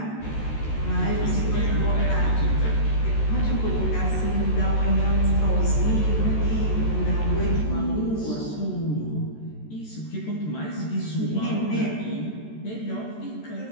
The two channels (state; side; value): late; right; 14 ms